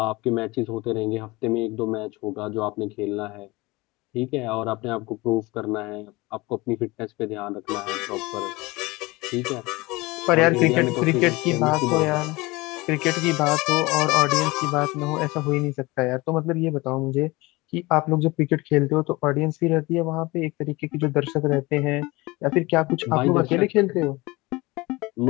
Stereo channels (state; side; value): quieter; right; 22.4 dB